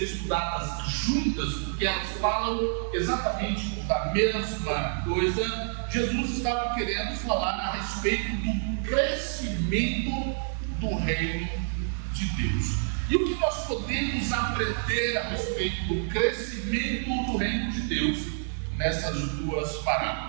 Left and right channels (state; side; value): silent; left; digital silence